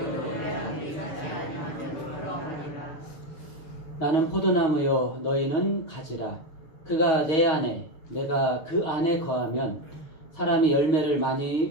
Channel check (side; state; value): right; late; 6.8 ms